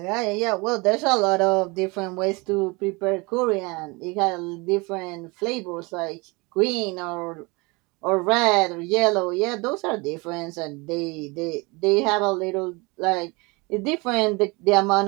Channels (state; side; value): quieter; left; 26.5 dB